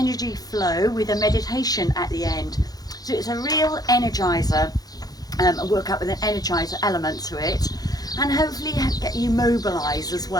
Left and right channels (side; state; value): right; late; 0.19 ms